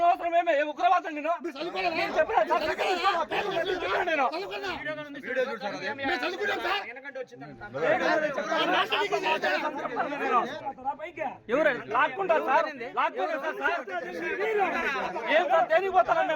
అవసరం ఏమే? ఉగ్రవాదం నేను చెప్పినా సార్. నేను ఎవరు లాక్కుంటారు సార్? లాక్కుంటారు సార్. ఏం సార్ దేనికి పోతారా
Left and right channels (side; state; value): both; identical; correlation 1.00